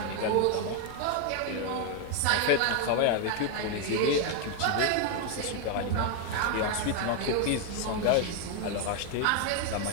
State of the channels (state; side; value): different; both; correlation 0.00